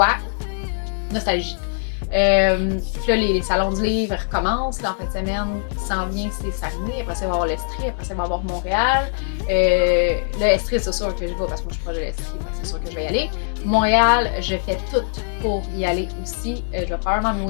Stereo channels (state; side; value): silent; right; digital silence